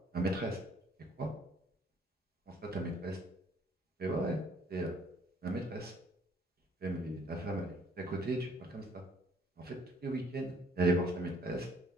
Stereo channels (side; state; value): both; normal; correlation 0.60